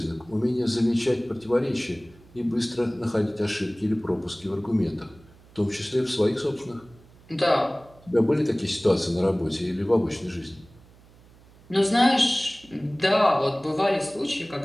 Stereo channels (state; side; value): noise; right; hum, 26 dB below the sound